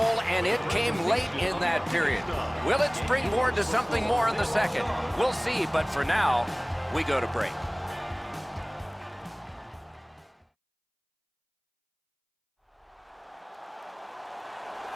and it came late in that period. Will it springboard to something more in the second? We'll see, but for now, we go to break.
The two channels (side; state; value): both; identical; correlation 1.00